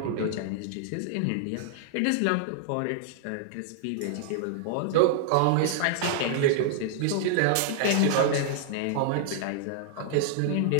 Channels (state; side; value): different; both; correlation -0.01